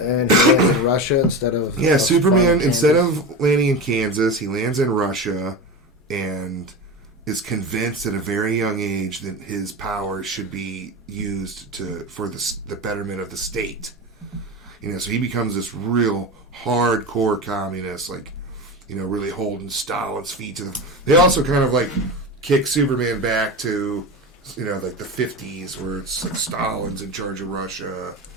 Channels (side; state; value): both; normal; correlation 0.24